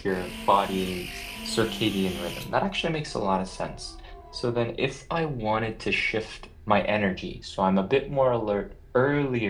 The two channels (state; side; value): identical; both; correlation 1.00